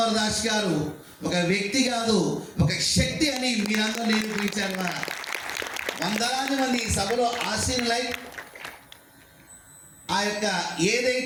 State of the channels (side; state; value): both; identical; correlation 1.00